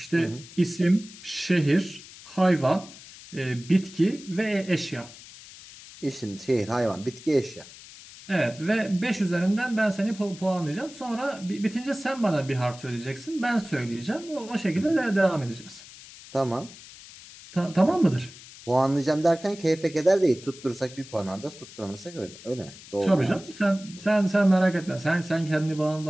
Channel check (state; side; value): noise; left; hiss, 18 dB below the sound